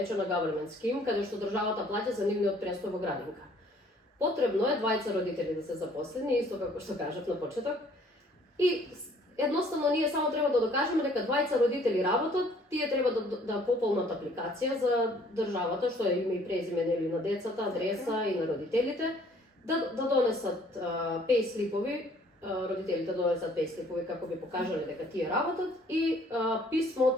government scheme, каде што државата плаќа за нивниот престој во градинка. Потребно е двајца родители да се запослени, исто како што кажав на почеток. И едноставно ние само треба да докажеме дека двајца родители работат, тие треба да пополнат апликација за државата, што е име и презиме нели на децата, адреса и на родителите, да донесат пейслипови, родителите донесат пейслипови како би покажале дека тие работат и писмо од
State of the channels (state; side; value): normal; both; correlation 0.58